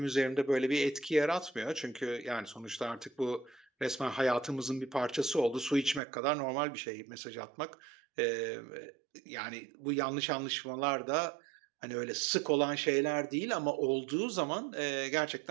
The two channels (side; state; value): left; drops out; at 6.0 s